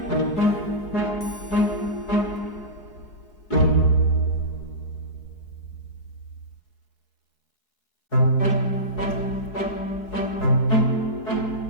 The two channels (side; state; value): right; late; 4.7 ms